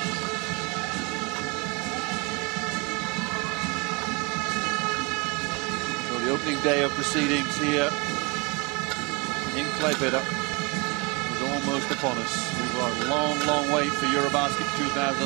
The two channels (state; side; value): quieter; left; 29.3 dB